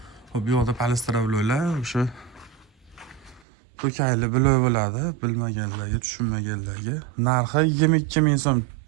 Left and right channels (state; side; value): drops out; left; at 3.5 s